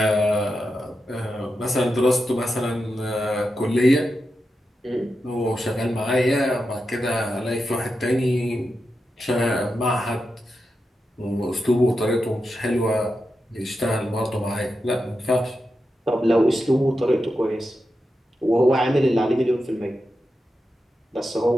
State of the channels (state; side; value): normal; both; correlation 0.89